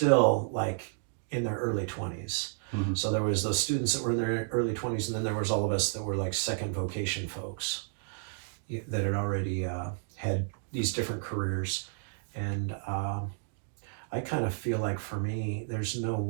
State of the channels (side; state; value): left; silent; digital silence